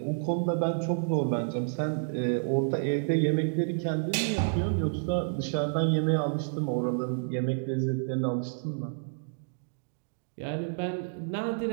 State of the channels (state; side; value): silent; left; digital silence